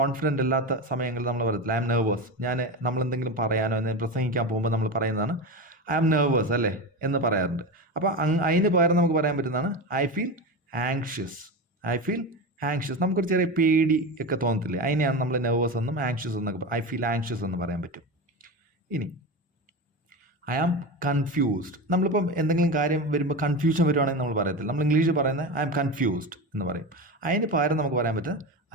അല്ലാത്ത സമയങ്ങളിൽ നമ്മൾ പറയത്തില്ല ഐ ആം നെർവസ്. നമ്മളെന്തെങ്കിലും പറയാനോ എന്തെങ്കിലും പ്രസംഗിക്കാൻ പോകുമ്പോൾ നമ്മൾ പറയുന്നതാണ് ഐ ആം നെർവസ് അല്ലേ എന്ന് പറയാറുണ്ട്. അപ്പോൾ അതിന് പകരം നമുക്ക് പറയാൻ പറ്റുന്നതാണ് I feel anxious. I feel anxious. നമുക്കൊരു ചെറിയ പേടി ഒക്കെ തോന്നത്തില്ലേ, അതിനെയാണ് നമ്മൾ നെർവസ് എന്നും ആങ്ഷ്യസ് എന്നൊക്കെ, ഐ ഫീൽ ആങ്ഷ്യസ് എന്ന് പറയാൻ പറ്റും. ഇനി ഐ ആം കൺഫ്യൂസ്ഡ്. നമ്മളിപ്പം എന്തെങ്കിലും കാര്യം വരുമ്പോൾ കൺഫ്യൂഷൻ വരുവാണെങ്കിൽ നമ്മൾ പറയത്തില്ല, നമ്മൾ ഇംഗ്ലീഷിൽ പറയുന്നത് ഐ ആം കൺഫ്യൂസ്ഡ് എന്ന് പറയും. അതിന് പകരം നമുക്ക് പറയാൻ പറ്റുന്നത്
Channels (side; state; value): both; normal; correlation 0.22